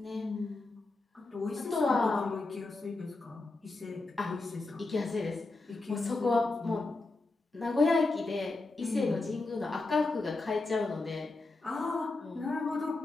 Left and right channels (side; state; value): right; quieter; 3.3 dB